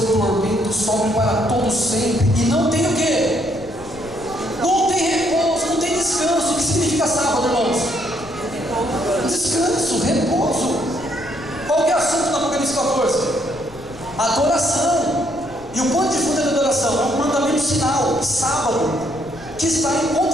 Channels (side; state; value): left; noise; rumble, 21 dB below the sound